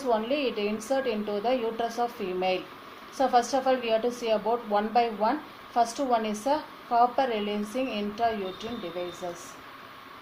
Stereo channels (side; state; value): both; identical; correlation 1.00